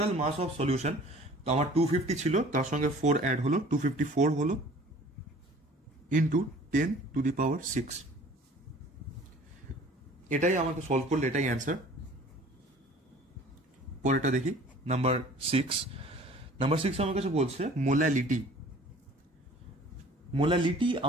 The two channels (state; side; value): normal; both; correlation 0.49